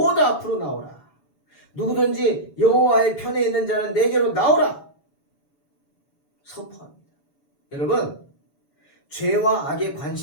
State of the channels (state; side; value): late; right; 7.0 ms